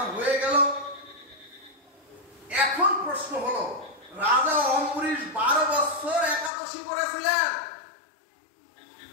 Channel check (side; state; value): right; drops out; at 6.5 s